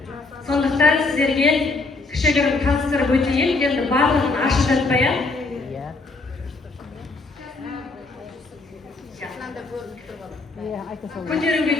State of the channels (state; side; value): quieter; right; 3.6 dB